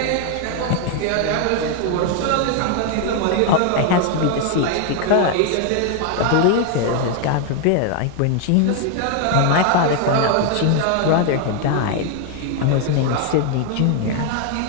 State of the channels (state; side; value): different; both; correlation 0.01